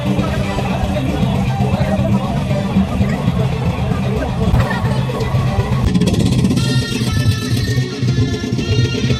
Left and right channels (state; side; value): identical; both; correlation 1.00